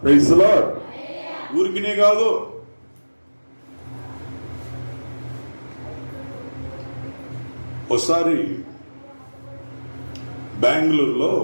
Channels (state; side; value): inverted; both; correlation -1.00